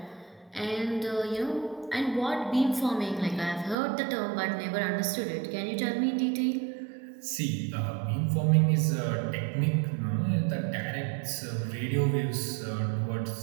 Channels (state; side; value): drops out; left; at 3.8 s